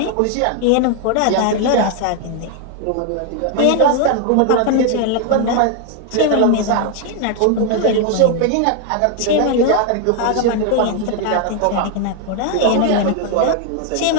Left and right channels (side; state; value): both; different; correlation 0.00